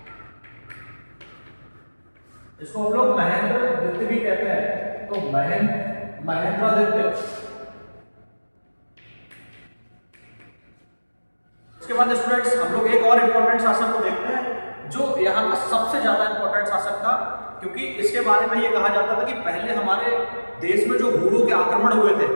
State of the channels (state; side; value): inverted; both; correlation -1.00